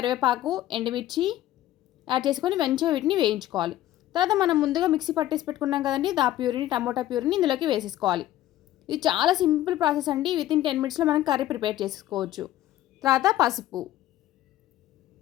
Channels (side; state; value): right; quieter; 13.8 dB